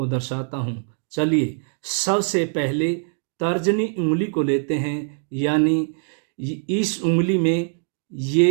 दर्शाता हूँ। चलिए सबसे पहले तर्जनी उंगली को लेते हैं, यानी इस उंगली में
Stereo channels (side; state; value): left; silent; 64 dB below the other